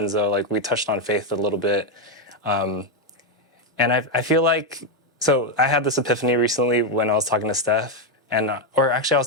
like we touched on faith a little bit. And I feel like, so I had this epiphany recently when I was talking to Steph, or actually I was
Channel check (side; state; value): both; normal; correlation 0.04